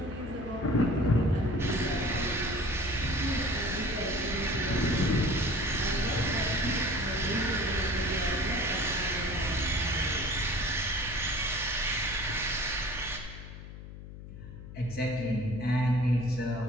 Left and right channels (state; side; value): noise; left; hum, 13 dB below the sound